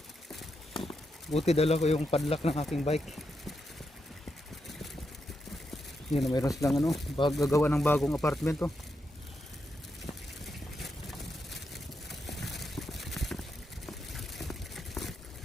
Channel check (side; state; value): both; normal; correlation 0.84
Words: Buti dala ko yung padlock ng aking bike. Yun, mayroon silang ano, gagawa ng bagong apartment to.